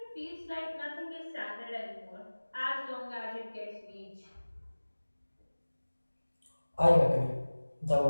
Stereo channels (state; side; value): inverted; both; correlation -1.00